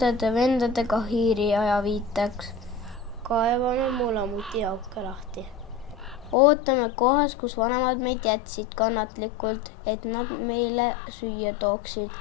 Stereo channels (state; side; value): drops out; right; at 6.4 s